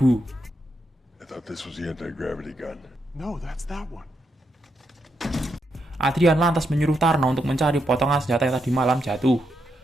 I thought this was the anti-gravity gun. No, that's that one. Adrian lantas menyuruh Tarno untuk mencari potongan senjata yang tadi malam jatuh.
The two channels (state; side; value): normal; both; correlation 0.81